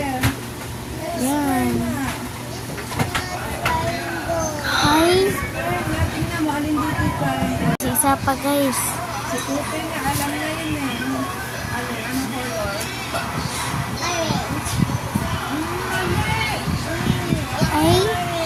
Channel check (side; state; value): both; identical; correlation 1.00